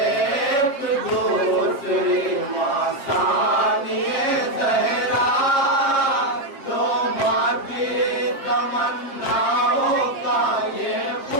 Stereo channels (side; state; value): right; late; 7.3 ms